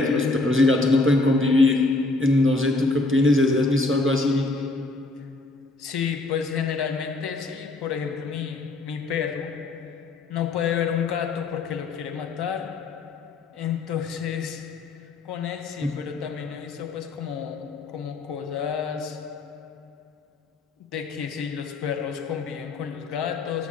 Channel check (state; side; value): quieter; right; 3.2 dB